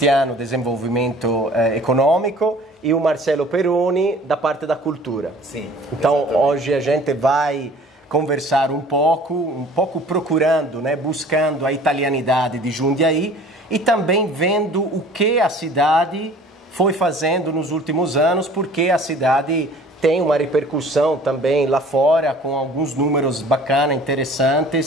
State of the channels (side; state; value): both; normal; correlation 0.49